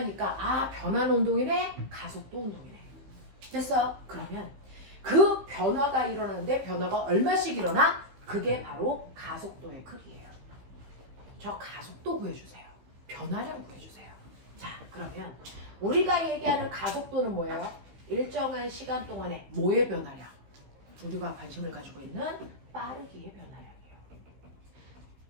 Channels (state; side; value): late; left; 15 ms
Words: 아, 변하는 운동이네? 가속도 운동이네. 됐어? 그러면 그 변화가 일어나는데 변화가 얼마씩 일어나? 그게 바로 가속도의 크기예요. 저 가속도 구해주세요. 변화량 구해주세요. 자, 그러면 우리가 얘기하는 가속도는 뭐예요? 일정한 시간 동안에 뭐의 변화량? 우리가 관심을 가지고 있는 빠르기의 변화량이에요.